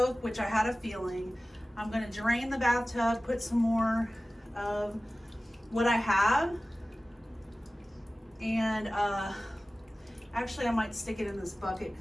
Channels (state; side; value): normal; both; correlation 0.97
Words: which I had a feeling. I'm gonna drain the bathtub, put some more of what I have. And actually I might stick it in this bucket